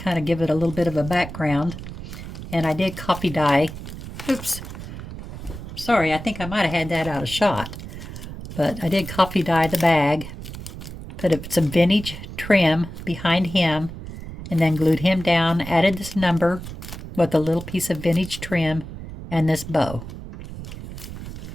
of give it a little bit of a background. And I did copy dye. Oops. Sorry, I think I might have had that out of shot. But I did copy dye the bag, put some vintage trim behind him, and then glued him down, added this number with a little piece of vintage trim and this bow.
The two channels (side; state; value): right; noise; rumble, 11 dB below the sound